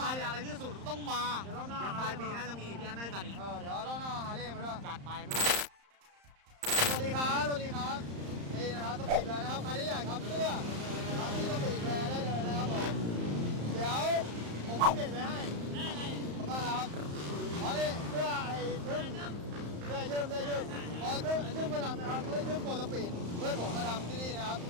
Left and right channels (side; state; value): left; late; 35 ms